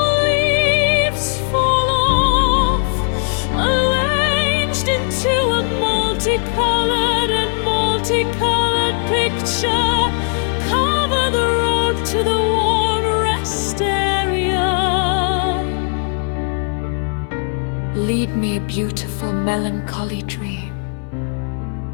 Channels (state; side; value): silent; right; 62 dB below the other